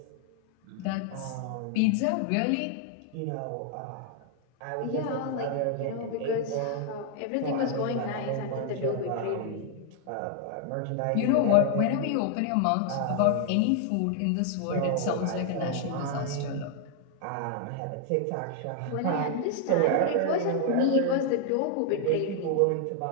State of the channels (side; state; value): both; different; correlation 0.00